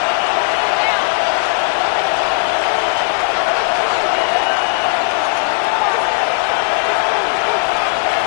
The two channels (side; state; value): right; silent; digital silence